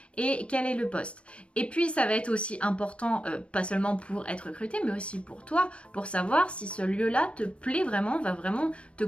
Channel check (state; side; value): late; right; 0.059 ms